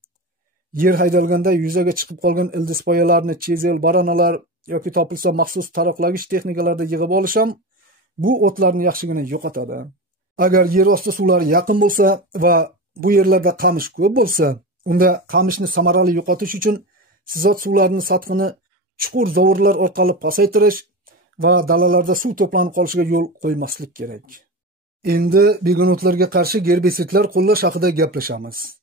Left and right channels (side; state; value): both; normal; correlation 0.24